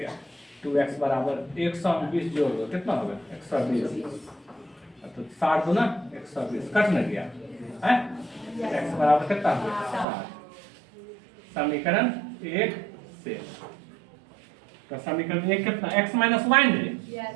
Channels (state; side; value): drops out; left; at 10.1 s